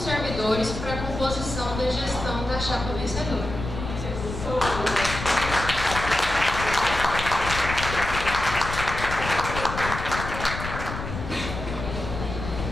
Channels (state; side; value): noise; left; rumble, 7 dB below the sound